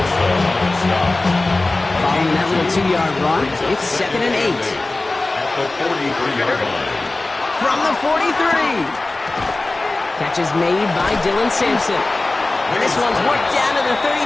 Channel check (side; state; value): right; quieter; 3.1 dB